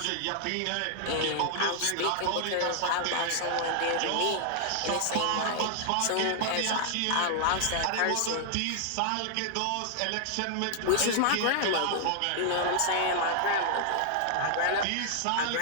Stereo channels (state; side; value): different; both; correlation 0.00